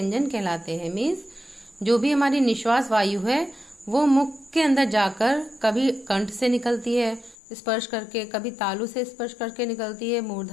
कहलाते हैं। मीन्स जो भी हमारी निश्वास वायु है वो मुख के अंदर जाकर कभी कंठ से निकलती है स्पर्श करके, कभी तालु से स्पर्श करके निकलती है,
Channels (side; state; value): right; drops out; at 7.4 s